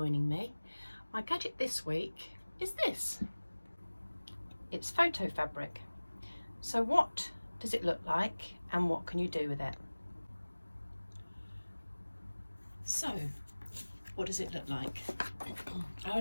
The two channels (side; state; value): both; inverted; correlation -1.00